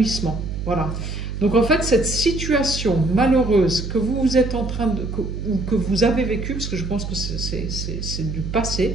Voilà. Donc en fait, cette situation malheureuse que vous êtes en train ou que vous avez vécue, parce que je pense que c'est du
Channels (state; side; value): noise; right; hum, 5 dB below the sound